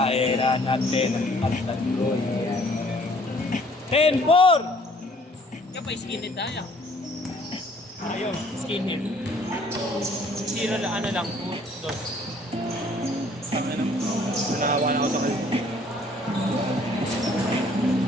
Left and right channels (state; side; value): normal; both; correlation 0.59